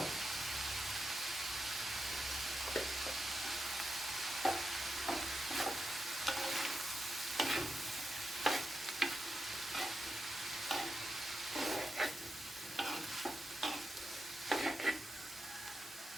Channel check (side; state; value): both; normal; correlation 0.88